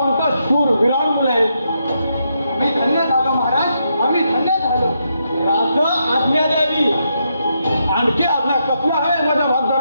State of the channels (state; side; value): inverted; both; correlation -0.80